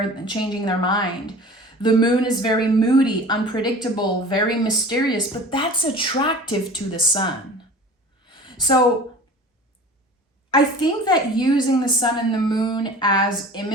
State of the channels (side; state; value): both; normal; correlation 0.41